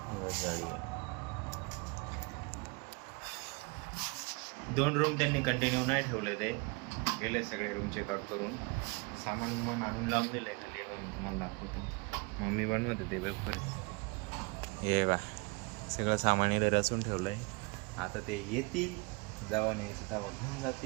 जाळी. 2 रूम त्यांनी कंटिन्यू नाही ठेवले, ते गेले सगळे रूम चेकआउट करून. सामान मन आणून लावून दिलं आहे खाली. मी तुम्हाला दाखवतो. मम्मी बनवत होते वेफर. हे बा, सगळं सामान इथे रचून ठेवलं आहे. आता ते येतील, जेव्हा न्यायचं तेव्हा घेऊन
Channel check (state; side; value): quieter; left; 29.8 dB